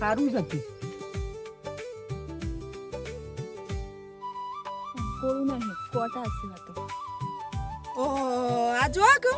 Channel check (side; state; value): both; identical; correlation 1.00